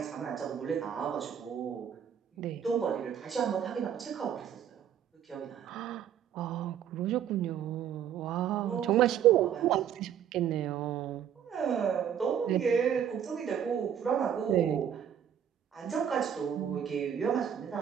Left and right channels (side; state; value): left; quieter; 9.0 dB